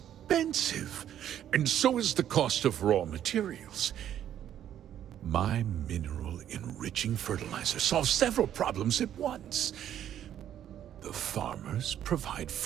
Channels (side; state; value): left; quieter; 10.6 dB